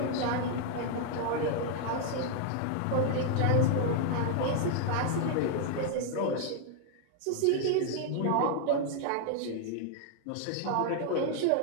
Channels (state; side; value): different; both; correlation 0.00